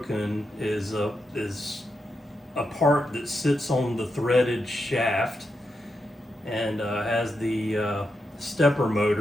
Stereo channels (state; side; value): normal; both; correlation 0.85